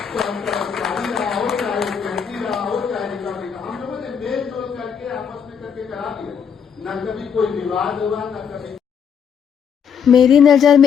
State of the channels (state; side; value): quieter; right; 7.3 dB